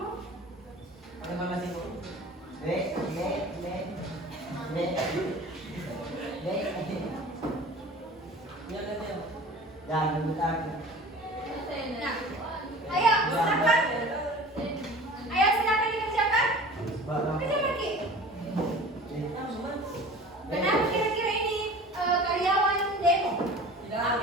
Jangan aku. Nah, ayo silakan. Ayo silakan dikerjakan. Kerjakan Ki. Kenapa kira-kira ini karyawan demo?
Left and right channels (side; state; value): both; normal; correlation 0.41